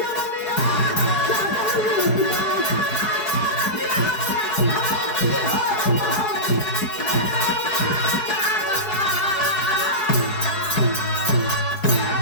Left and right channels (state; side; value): late; right; 4.7 ms